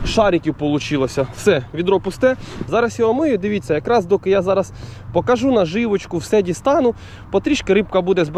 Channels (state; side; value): identical; both; correlation 1.00